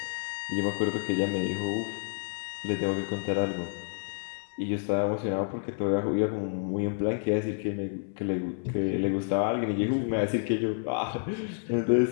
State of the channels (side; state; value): right; silent; digital silence